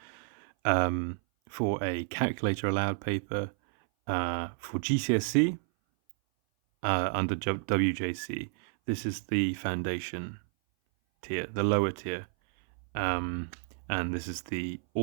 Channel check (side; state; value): left; silent; 57 dB below the other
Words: for a calculator allowed paper for GCSE under wjec. This is the foundation tier, the lower tier, and this is the